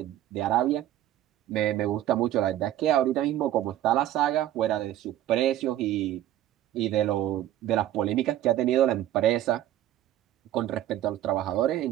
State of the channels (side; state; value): left; quieter; 12.9 dB